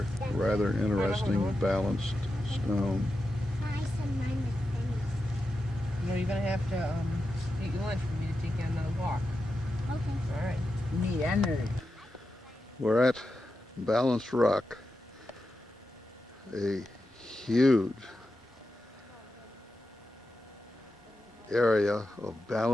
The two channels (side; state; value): both; normal; correlation 0.89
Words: rather interesting balanced stone. No, you're going to have to eat your lunch for me to take you on another walk. Okay. All right. Need energy. We're at Balanced Rock, a huge area of